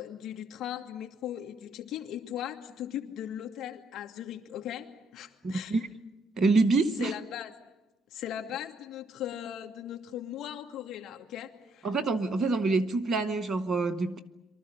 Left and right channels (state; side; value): normal; both; correlation 0.71